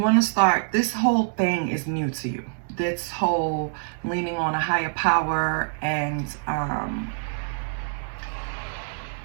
to start, this whole thing is new to you. This whole leaning on a higher power and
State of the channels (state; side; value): silent; left; 62 dB below the other